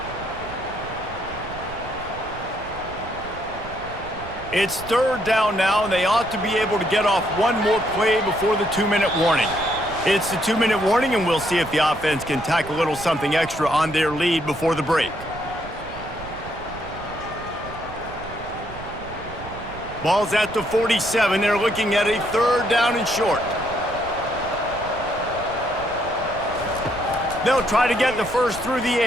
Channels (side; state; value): right; noise; rumble, 14 dB below the sound